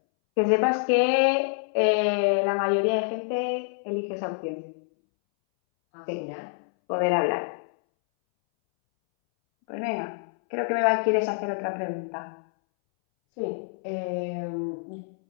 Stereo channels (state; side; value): silent; right; 60 dB below the other